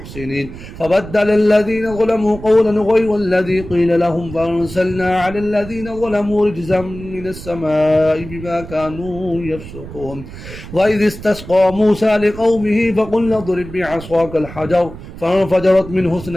فبدل الذين ظلموا قولا غير الذي قيل لهم فأرسلنا على الذين ظلموا رجزا من السماء بما كانوا يفسقون وإذ استسقى موسى لقومه فقلنا اضرب بعصاك الحجر فانفجرت منه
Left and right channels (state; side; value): noise; right; rumble, 13 dB below the sound